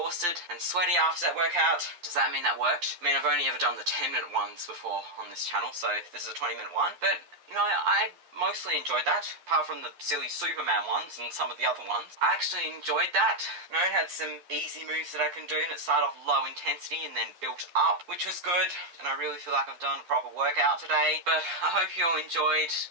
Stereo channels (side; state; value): left; late; 11 ms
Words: and sweaty after that workout. Does that mean that worked? I mean, I've only ever done the 10-minute ones before on this channel, so this is a 20-minute one. But, you know, I mostly enjoyed that, apart from the silly Superman ones and some of the other ones. I actually enjoyed that. You know, it had some easy moves that I can do, and it started off low intensity and then built up, which was good. And I really feel like I've done a proper workout today. But I hope you all enjoyed,